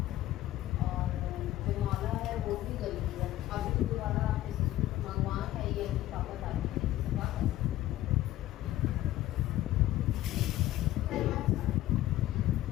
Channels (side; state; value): right; quieter; 14.7 dB